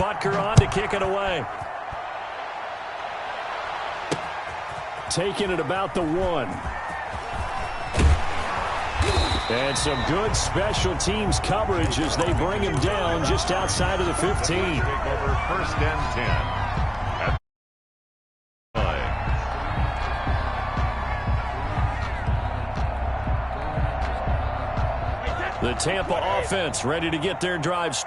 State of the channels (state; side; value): identical; both; correlation 1.00